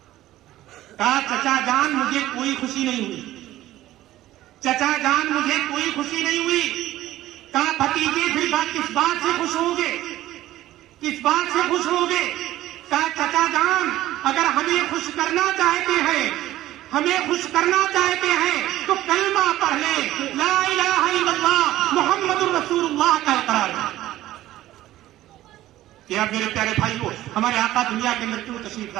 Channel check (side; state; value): left; quieter; 14.8 dB